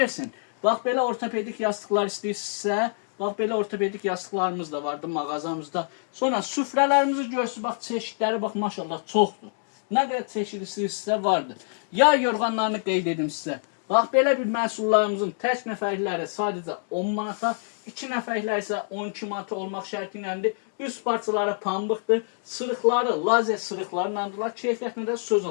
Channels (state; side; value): silent; right; digital silence